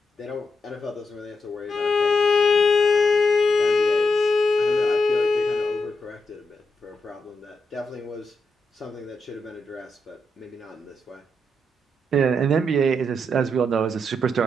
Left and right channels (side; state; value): both; normal; correlation 0.83